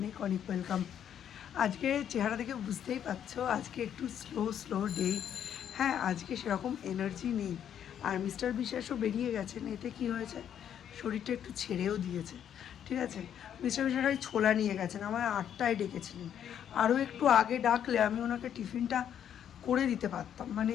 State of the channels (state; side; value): quieter; right; 9.4 dB